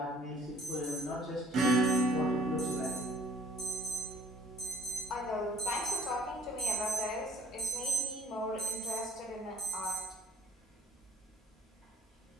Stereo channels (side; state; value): both; normal; correlation 0.54